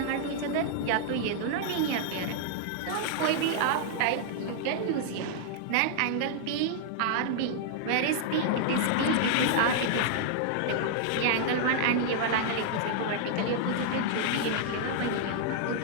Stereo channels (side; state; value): both; different; correlation -0.01